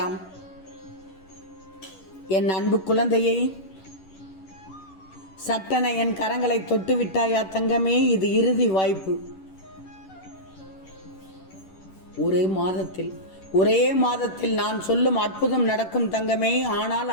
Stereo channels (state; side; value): late; right; 11 ms